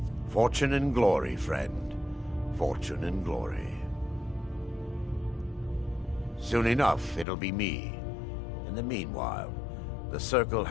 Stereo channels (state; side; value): drops out; right; at 7.2 s